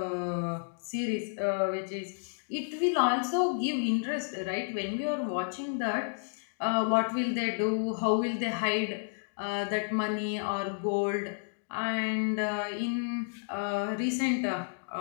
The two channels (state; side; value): silent; right; digital silence